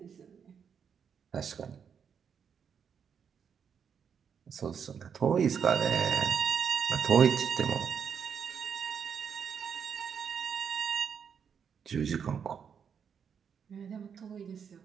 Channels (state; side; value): quieter; left; 7.2 dB